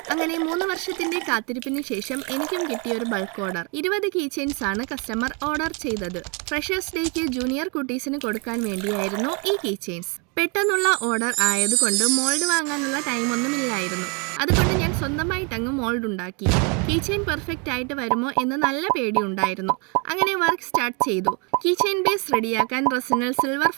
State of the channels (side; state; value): left; quieter; 33.2 dB